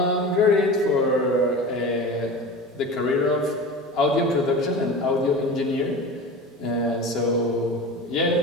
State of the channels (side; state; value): both; normal; correlation 0.32